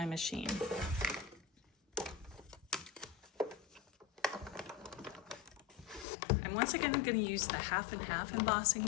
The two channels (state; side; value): drops out; right; at 6.1 s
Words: machine. I'm once again going to use the half and half embossing